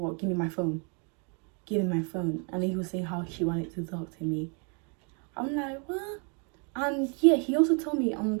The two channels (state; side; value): quieter; left; 37.2 dB